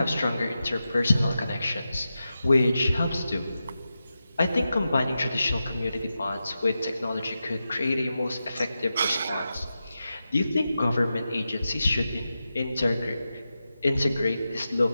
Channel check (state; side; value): inverted; both; correlation -0.91